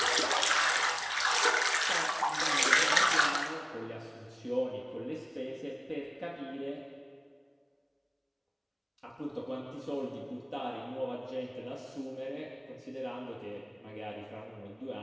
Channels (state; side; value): identical; both; correlation 1.00